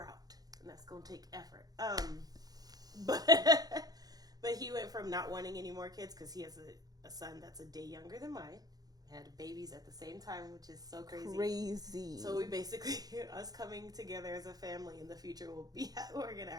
out. And that's going to take effort. But he went from not wanting any more kids because he has a son that's a day younger than mine. Had babies at the same time, which is so crazy. So we basically, us coming together as a family in the future we're going to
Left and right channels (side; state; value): left; late; 0.19 ms